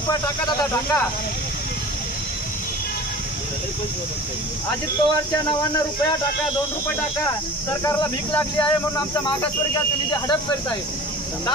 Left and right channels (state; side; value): normal; both; correlation 0.40